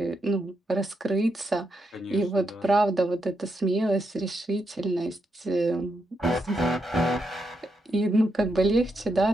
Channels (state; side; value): normal; both; correlation 0.82